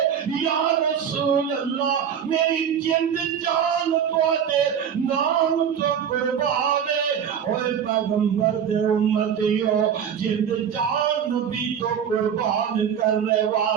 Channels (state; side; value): quieter; left; 8.2 dB